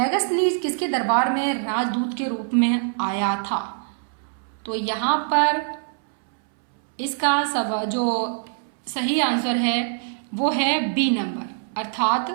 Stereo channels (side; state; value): left; silent; 63 dB below the other